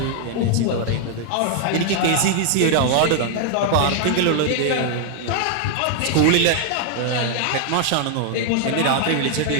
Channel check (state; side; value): different; both; correlation 0.00